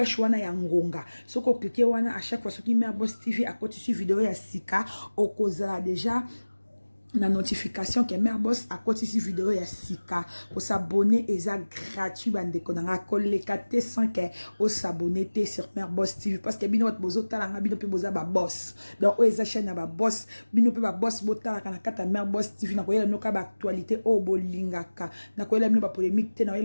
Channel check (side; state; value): both; inverted; correlation -1.00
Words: wana ya ngonga. So ko cliquer wana à chaque fois ce qui met à Boss TV à côté de vidéo ya sika au cause déjà la notification que Mère Boss à côté de vidéo ya sika pour s'abonner et ça gratuit bande konanga kolekate sans que au s'abonner sur Mère Boss TV parce que bino wat bozo talanga bino pe boza ba boss donc o eza chaîne ba boss bino pe ba boss botala kana kata Mère Boss TV na koyela no ka ba actualité o bolingaka na koyela bino ba polémique te na